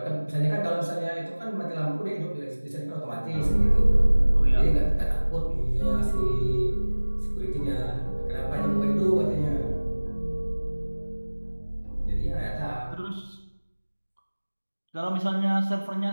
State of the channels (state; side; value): inverted; both; correlation -1.00